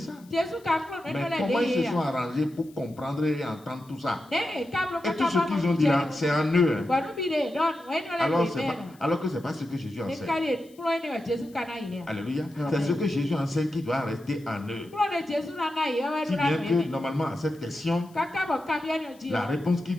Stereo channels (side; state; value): left; noise; hiss, 28 dB below the sound